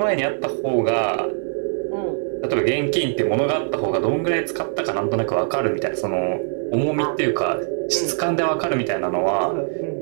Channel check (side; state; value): left; silent; 64 dB below the other